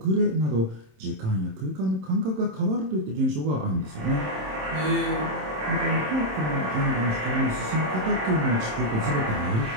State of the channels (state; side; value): late; left; 27 ms